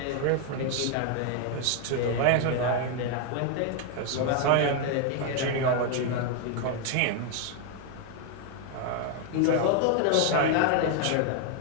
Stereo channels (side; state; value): both; different; correlation 0.01